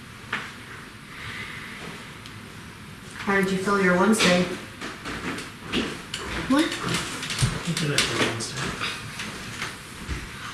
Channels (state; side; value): identical; both; correlation 1.00